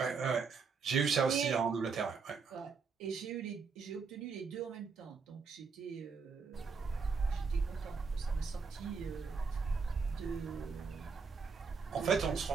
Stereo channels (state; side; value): quieter; left; 5.2 dB